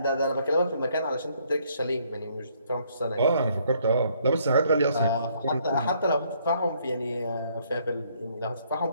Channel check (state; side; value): inverted; both; correlation -0.67